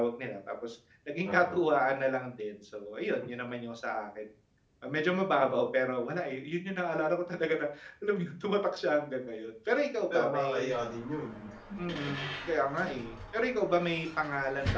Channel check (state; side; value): identical; both; correlation 1.00